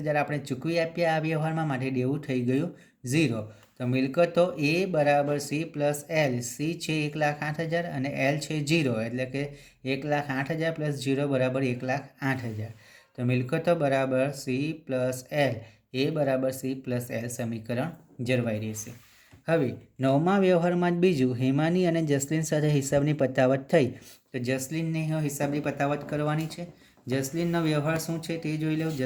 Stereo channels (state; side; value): identical; both; correlation 1.00